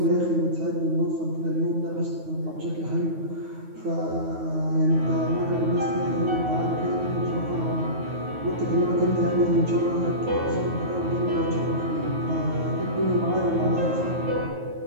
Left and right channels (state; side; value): late; left; 9.3 ms